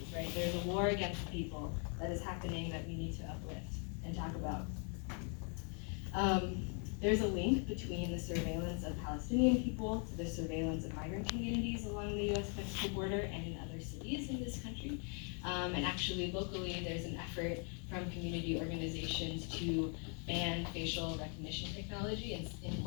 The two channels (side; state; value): right; quieter; 39.6 dB